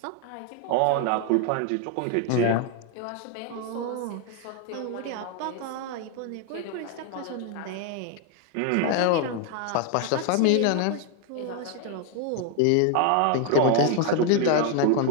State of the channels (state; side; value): different; both; correlation 0.01